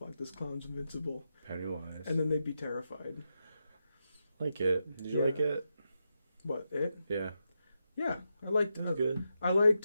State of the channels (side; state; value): both; inverted; correlation -0.86